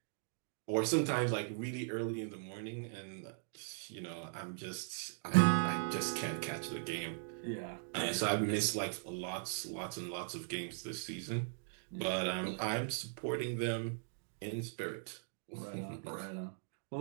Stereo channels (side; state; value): left; silent; digital silence